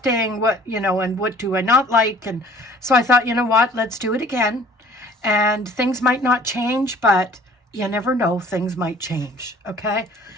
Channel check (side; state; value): both; normal; correlation 0.52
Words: and what do I not like. And so I thought, you know what, let's do it again. And things might not change, but you never know, things might change. Okay,